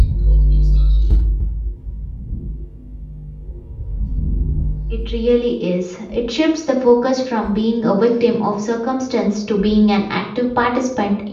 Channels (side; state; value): both; identical; correlation 1.00